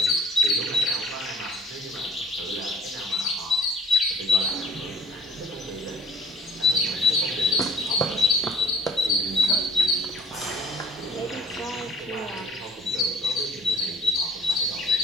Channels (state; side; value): normal; both; correlation 0.48